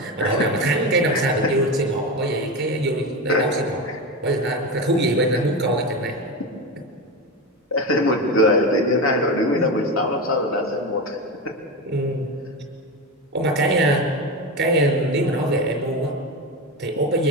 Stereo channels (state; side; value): normal; both; correlation 0.19